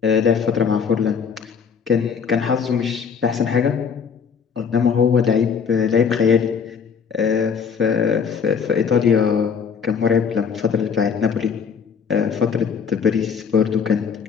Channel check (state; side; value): quieter; right; 6.5 dB